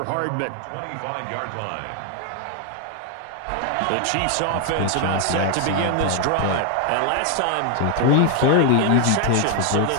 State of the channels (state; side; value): different; both; correlation 0.00